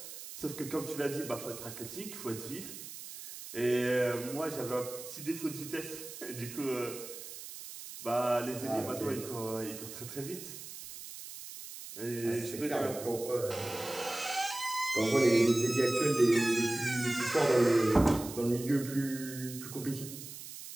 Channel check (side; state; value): right; noise; hiss, 12 dB below the sound